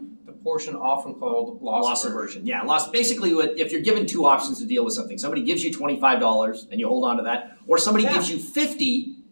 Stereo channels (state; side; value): inverted; both; correlation -1.00